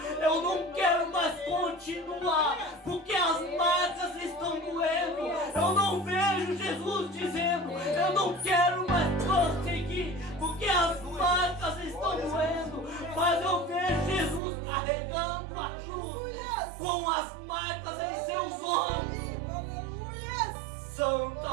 eu não quero mais continuar, porque as marcas estão doendo. Eu não vejo Jesus dizendo, eu não quero mais prosseguir, porque as marcas estão doendo. Mas eu vejo Jesus carregando a cruz com as marcas em seus ombros. Santo é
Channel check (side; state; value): left; drops out; at 14.4 s